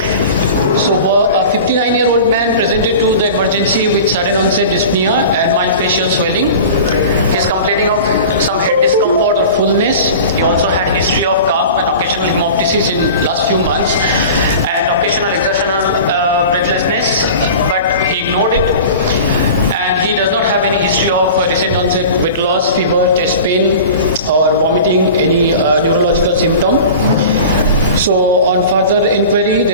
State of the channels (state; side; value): inverted; both; correlation -0.37